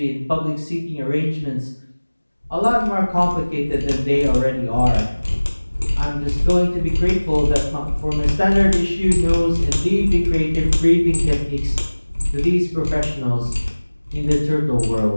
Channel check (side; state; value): both; inverted; correlation -1.00